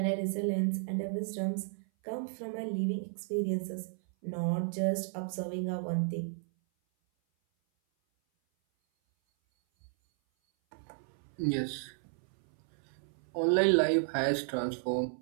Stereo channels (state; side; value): silent; left; 56 dB below the other